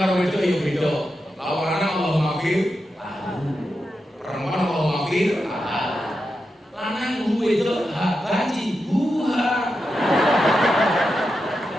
karo wedok ya beda. Lawanane Allah maghfir. Perempuan Allah maghfir. Lanang wedok baji buha.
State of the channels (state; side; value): normal; both; correlation 0.88